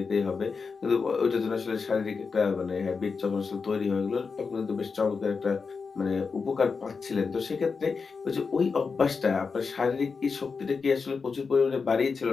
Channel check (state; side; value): quieter; right; 5.0 dB